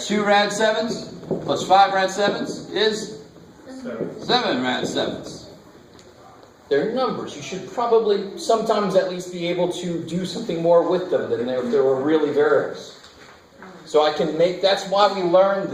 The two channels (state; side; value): identical; both; correlation 1.00